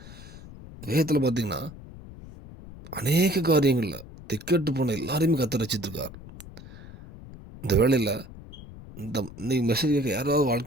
வேதத்தில் பார்த்திங்கன்னா அநேக காரியங்களில் திக்கட்டு போன எல்லாரையுமே கர்த்தர் ரட்சித்திருக்கார். இந்த வேளையில் இன்னைக்கு மெசேஜ் கேட்க யாராவது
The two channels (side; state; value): left; noise; rumble, 16 dB below the sound